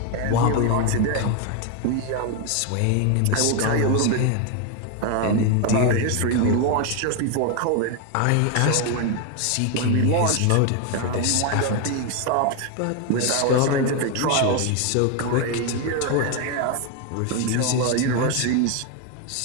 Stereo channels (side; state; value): both; different; correlation 0.01